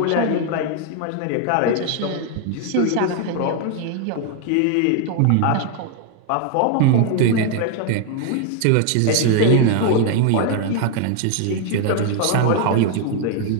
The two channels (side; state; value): both; different; correlation 0.00